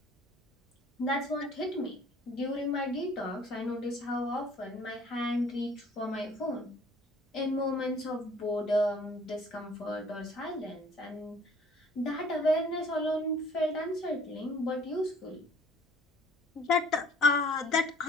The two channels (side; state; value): both; normal; correlation 0.55